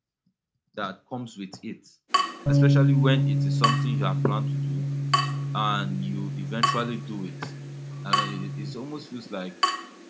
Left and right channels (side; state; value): both; identical; correlation 1.00